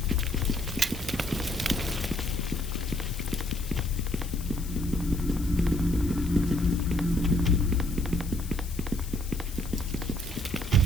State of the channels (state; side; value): noise; left; hiss, 15 dB below the sound